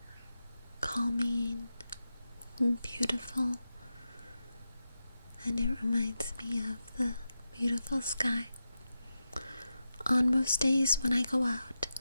calming and beautiful, and it reminds me of the beautiful sky. On most days when I go out,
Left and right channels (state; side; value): inverted; both; correlation -0.90